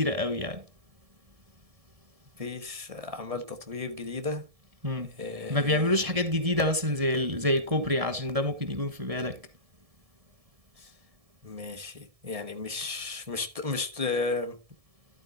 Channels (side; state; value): left; late; 1.7 ms